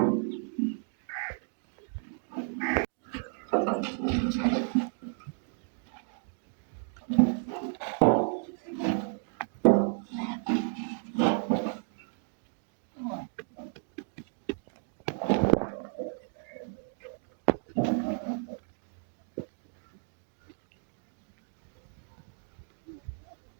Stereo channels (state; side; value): silent; left; 56 dB below the other